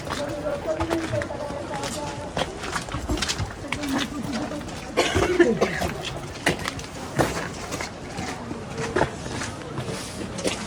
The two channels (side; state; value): both; identical; correlation 1.00